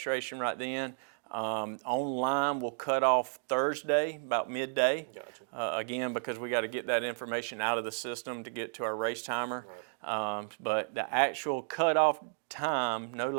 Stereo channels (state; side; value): silent; left; digital silence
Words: right then. Online will cut off Thursday about midday. Gotcha. Again, because we got to get that information out of the system to get to our race timer. Right. But the actual cutoff time, no